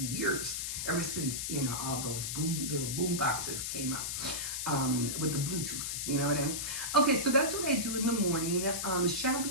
years, ever since, all those little boom boxes came out with the Bluetooth. You know what I mean? Okay, so that's what I do in the morning.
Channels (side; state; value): left; noise; hiss, 3 dB below the sound